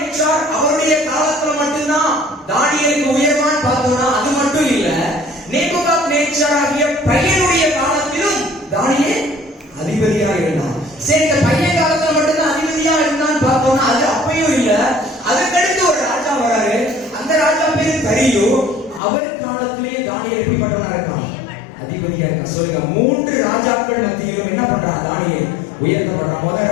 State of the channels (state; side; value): drops out; right; at 19.0 s